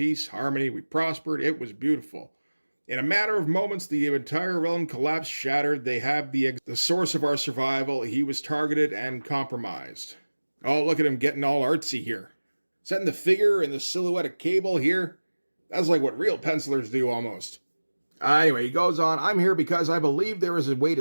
harmony. We prospered. It was beautiful. In a matter of moments, the entire realm collapsed, shattered. They have the source of our survival. He was targeted and compromised. Oh, look at him getting all artsy here. Setting the figure and the silhouette of Cable here. That's like what real pencilers do almost. Anyway, he goes on, I'm here because I believe there is a way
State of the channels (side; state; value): both; inverted; correlation -1.00